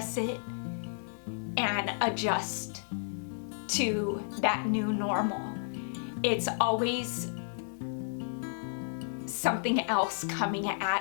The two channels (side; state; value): right; silent; digital silence